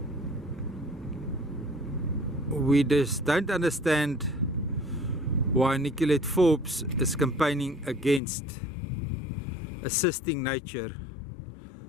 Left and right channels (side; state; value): right; drops out; at 8.2 s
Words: We just don't understand why Nicolette Forbes is campaigning against assisting nature